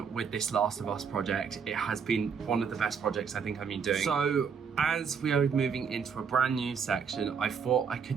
with this Last of Us project. It has been one of the best projects I think I've been doing. So as we are moving into a brand new section, I thought I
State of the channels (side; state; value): left; quieter; 6.3 dB